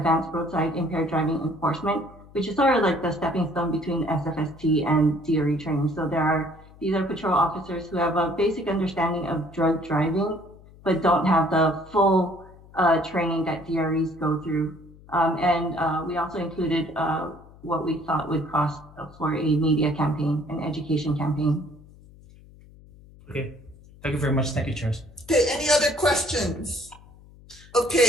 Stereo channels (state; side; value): noise; left; hum, 23 dB below the sound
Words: roadside impaired driving enforcement, which is sort of like the stepping stone between SFST and DRE training. So these are patrol officers who have a basic understanding of drug driving, but don't have the full training that DREs go through. And we also included what we thought would cost for a media campaign, an education campaign. Okay, thank you very much. Thank you, chairs. Okay, any other questions?